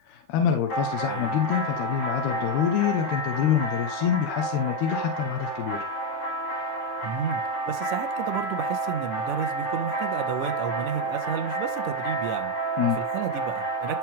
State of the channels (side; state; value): right; late; 12 ms